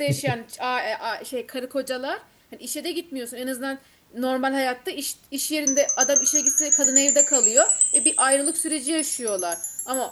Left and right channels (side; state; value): both; identical; correlation 1.00